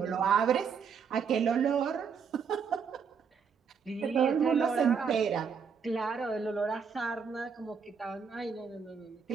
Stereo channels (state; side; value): quieter; left; 6.3 dB